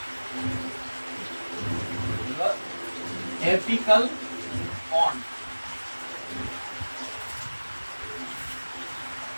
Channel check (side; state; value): both; inverted; correlation -1.00